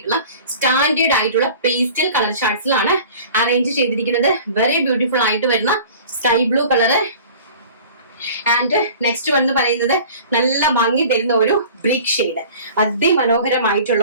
സ്റ്റാൻഡേർഡ് ആയിട്ടുള്ള പേസ്റ്റൽ കളർ ചാർട്ട്സിലാണ് അറേഞ്ച് ചെയ്തിരിക്കുന്നത്. വെരി ബ്യൂട്ടിഫുൾ ആയിട്ട് വരുന്ന sky blue colour. And next one എന്ന് പറയുന്നത് നല്ല ഭംഗി തരുന്ന ഒരു ബ്രിക്ക് ഷെയ്ഡ്.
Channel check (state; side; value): inverted; both; correlation -0.44